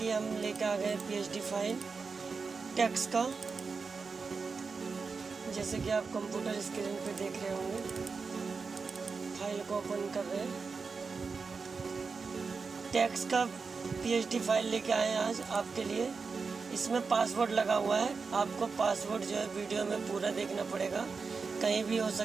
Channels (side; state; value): left; quieter; 4.8 dB